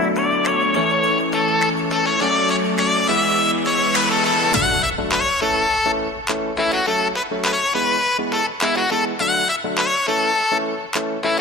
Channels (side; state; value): both; normal; correlation 0.51